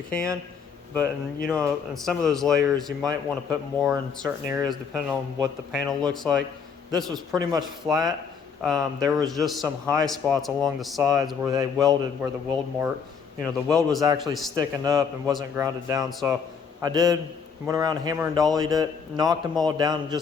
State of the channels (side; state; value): right; quieter; 6.3 dB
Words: can, but in some of those layers you might want to put more in certain areas depending on what the panel looks like. This was pretty much flat. There was just some high spots along the sides where they welded, where the weld mark, the weld was actually sticking up and wasn't grounded down. So I went around, hammer and dollied it, knocked them all down